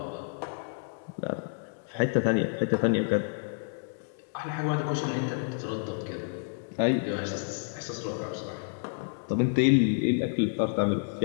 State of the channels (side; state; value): right; silent; digital silence